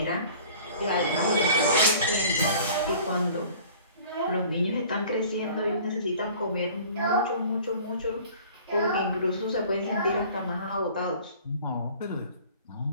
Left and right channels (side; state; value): both; inverted; correlation -0.48